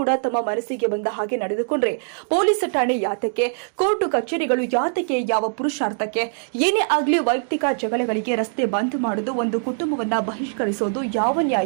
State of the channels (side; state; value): left; silent; digital silence